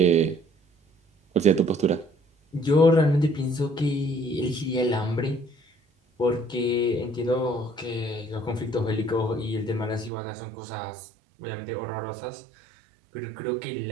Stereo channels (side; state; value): left; drops out; at 10.1 s